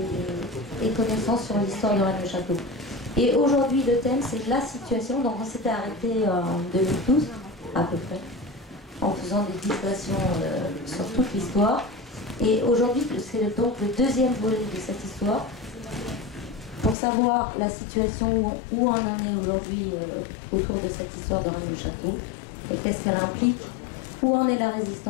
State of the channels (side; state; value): right; drops out; at 16.9 s